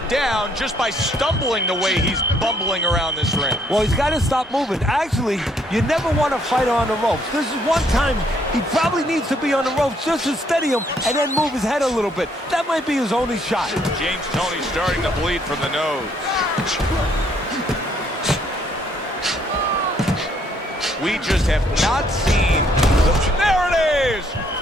down just by stumbling the way he's bumbling around this ring. Well, he's got to stop moving. Actually, you never want to fight on the ropes. This is one time he probably needs to be on the ropes just to steady him and then move his head a little bit. That might be his only shot. James Toney starting to bleed from the nose. We just have not seen there it is!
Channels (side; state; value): both; normal; correlation 0.68